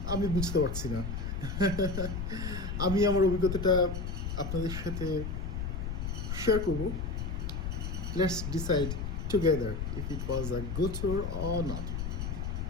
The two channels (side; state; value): left; noise; rumble, 3 dB below the sound